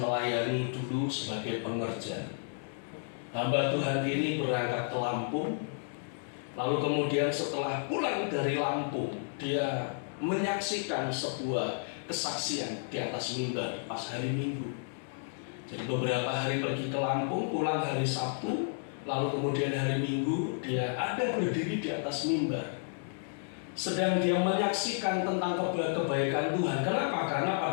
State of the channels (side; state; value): right; silent; digital silence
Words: dulu sebagai pengerja. Hamba Tuhan ini berangkat ke Lampung, lalu kemudian setelah pulang dari Lampung, dia menyaksikan sebuah kesaksian di atas mimbar pas hari Minggu. Jadi beberapa hari pergi ke Lampung, pulang hari Sabtu, lalu kemudian hari Minggu dia ada berdiri di atas mimbar. Sedang dia menyaksikan tentang kebaikan Tuhan. Kenapa? Karena